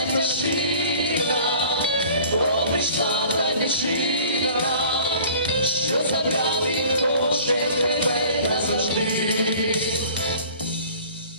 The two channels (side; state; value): both; inverted; correlation -0.47